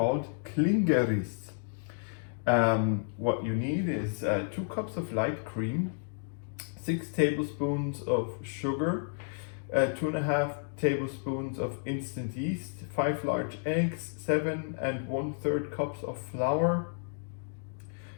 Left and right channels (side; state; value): right; silent; digital silence